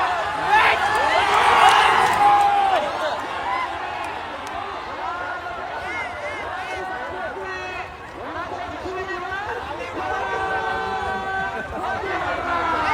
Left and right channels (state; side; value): identical; both; correlation 1.00